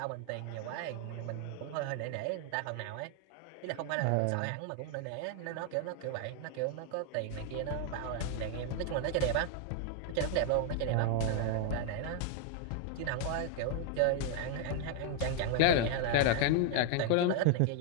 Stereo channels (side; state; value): both; different; correlation 0.00